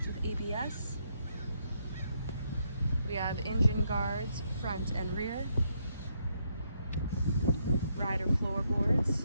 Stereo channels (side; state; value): both; inverted; correlation -0.76